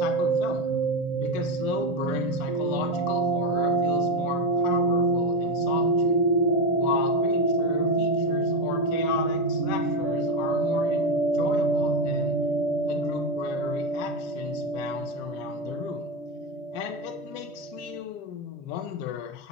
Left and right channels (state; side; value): normal; both; correlation 0.11